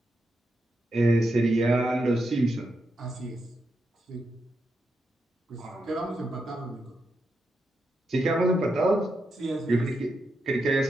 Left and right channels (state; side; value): normal; both; correlation 0.85